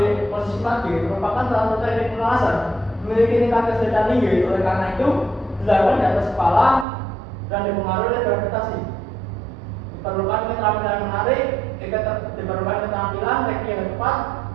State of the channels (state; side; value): drops out; left; at 6.9 s